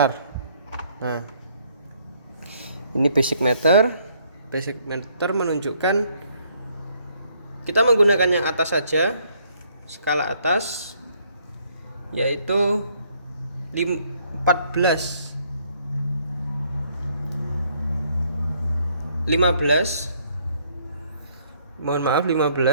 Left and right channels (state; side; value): inverted; both; correlation -0.67